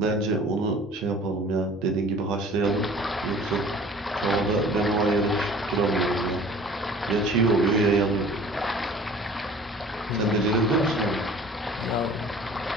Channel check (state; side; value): normal; both; correlation 0.47